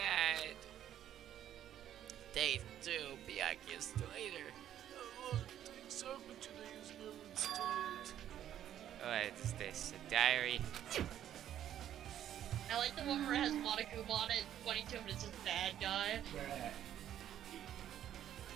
Day 2, Byakuya still later. A lot of things happened today is never started. What is this? A diary? I like the one where it has Monokuma on it, 22 and it's just bad guy. Bruh.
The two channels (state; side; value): quieter; left; 11.0 dB